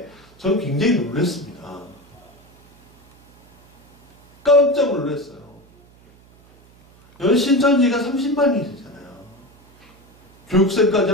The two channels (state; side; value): noise; right; hum, 28 dB below the sound